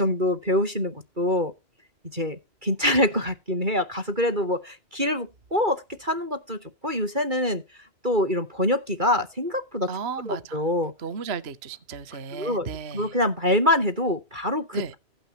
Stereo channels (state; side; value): late; left; 2.3 ms